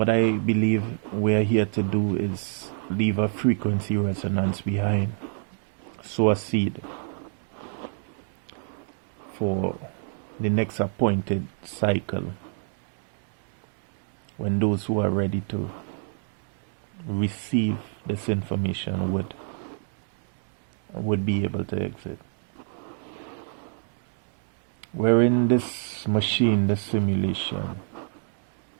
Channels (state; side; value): silent; left; 60 dB below the other